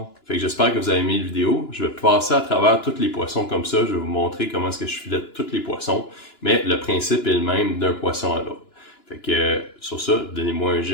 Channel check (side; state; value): right; late; 2.9 ms